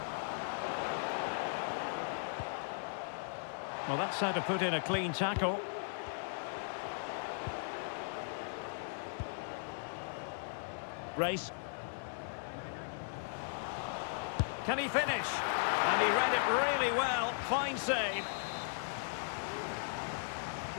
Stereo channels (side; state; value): right; silent; 53 dB below the other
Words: Well, that's how to put in a clean tackle. Race. Can he finish? And he read it really well. Fine save.